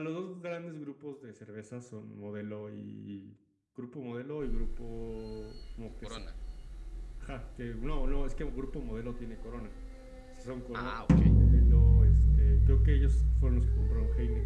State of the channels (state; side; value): identical; both; correlation 1.00